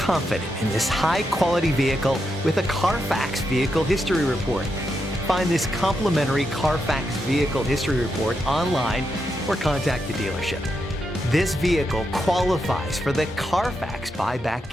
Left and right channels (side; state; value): both; normal; correlation 0.84